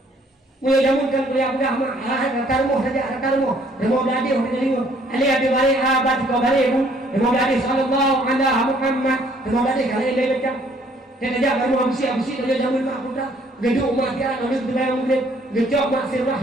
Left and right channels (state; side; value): normal; both; correlation 0.62